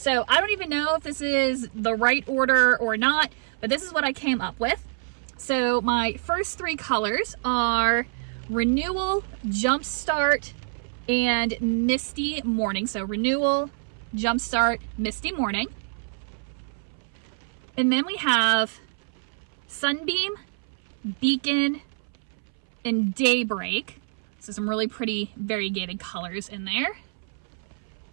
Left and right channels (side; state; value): left; silent; 60 dB below the other